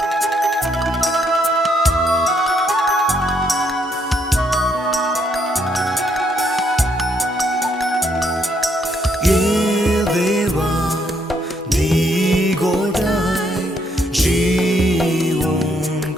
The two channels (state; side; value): normal; both; correlation 0.72